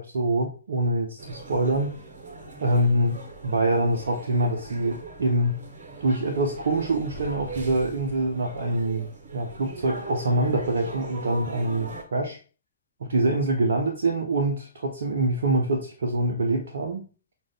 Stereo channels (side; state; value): both; inverted; correlation -0.60